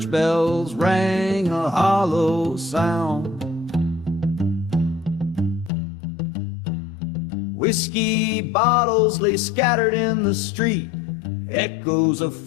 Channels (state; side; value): drops out; right; at 5.7 s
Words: bells rang a hollow sound. Whiskey bottles lay scattered in the street, echoes of